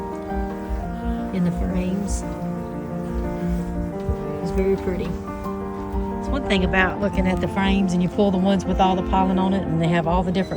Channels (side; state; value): both; identical; correlation 1.00